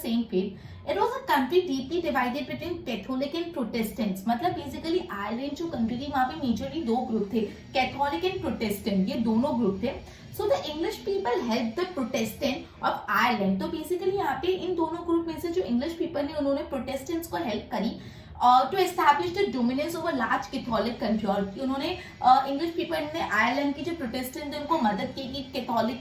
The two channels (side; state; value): both; identical; correlation 1.00